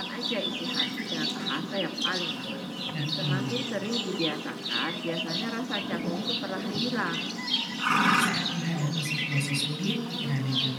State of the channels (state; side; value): identical; both; correlation 1.00